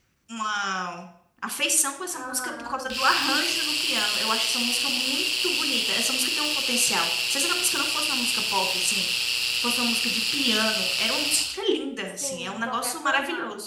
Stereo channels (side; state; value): both; identical; correlation 1.00